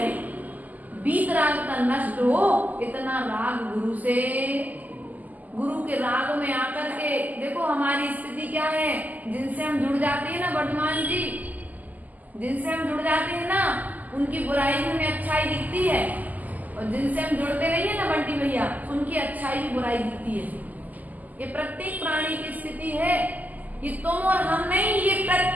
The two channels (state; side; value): late; left; 0.081 ms